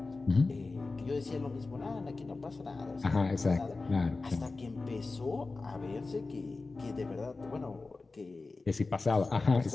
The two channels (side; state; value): right; quieter; 3.7 dB